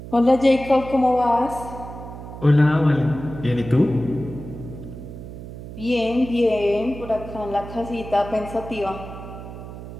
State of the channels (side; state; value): right; noise; hum, 12 dB below the sound